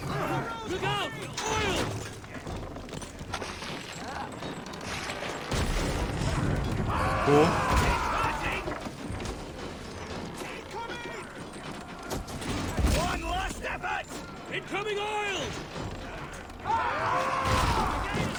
Look out! Oil! Cool. One last effort! Incoming oil!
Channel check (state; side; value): identical; both; correlation 1.00